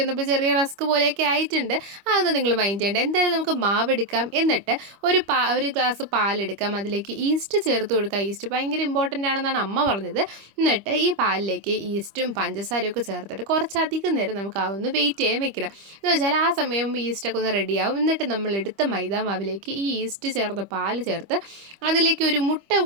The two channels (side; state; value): left; late; 25 ms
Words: വന്നപ്പോൾ ചെറിയ റസ്ക് പോലെയൊക്കെ ആയിട്ടുണ്ട്. അതൊന്നും നിങ്ങൾ മൈൻഡ് ചെയ്യേണ്ട. എന്തായാലും നമുക്ക് മാവ് എടുക്കാം. എന്നിട്ട് ഒരു ഗ്ലാസ് പാലെടുക്കാം. അതിലേക്ക് ഈസ്റ്റ് ചേർത്ത് കൊടുക്കുക. ഈസ്റ്റ് ഭയങ്കര ഇമ്പോർട്ടൻ്റ് ആണെന്നാണ് അമ്മ പറഞ്ഞത്. എന്നിട്ട് ഈ പാലിലേക്ക് ഈസ്റ്റും പഞ്ചസാരയും ഒക്കെ ചേർത്തിട്ട് കുറച്ചധികം നേരം നമുക്ക് അതൊന്ന് വെയിറ്റ് ചെയ്യാൻ വെക്കണം. എന്ന് വെച്ചാൽ ആ സമയം ഈസ്റ്റൊക്കെ ഒന്ന് റെഡിയാവും. എന്നിട്ട് നമ്മൾ എടുത്ത മൈദാ മാവിലേക്ക് ഈ ഈസ്റ്റ് ചേർത്ത് പാൽ ചേർത്ത് അതിലേക്ക് ഒരു മുട്ട